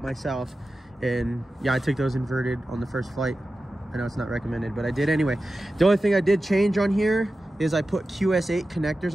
myself. And yeah, I took those inverted on the first flight. I know it's not recommended, but I did anyway. The only thing I did change on here is I put QS8 connectors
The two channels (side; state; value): both; normal; correlation 0.93